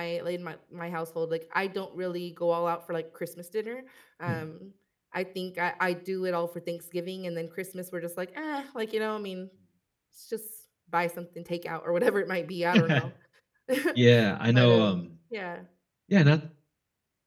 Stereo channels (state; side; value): identical; both; correlation 1.00